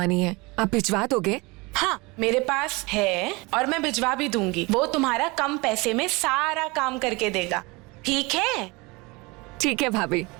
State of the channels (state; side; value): quieter; left; 25.3 dB